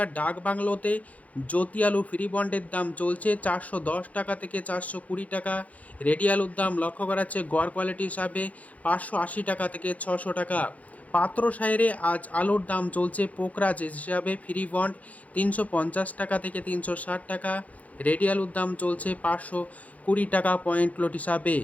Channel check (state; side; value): late; right; 0.070 ms